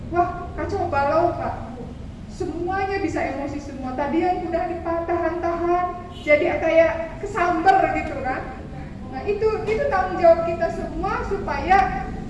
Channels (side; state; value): both; identical; correlation 1.00